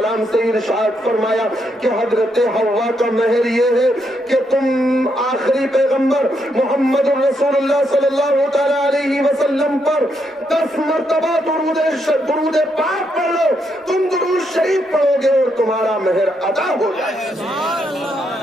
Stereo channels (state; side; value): normal; both; correlation 0.78